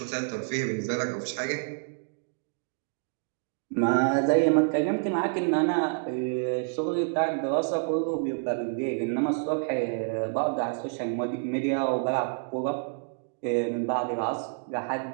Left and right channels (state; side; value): silent; left; digital silence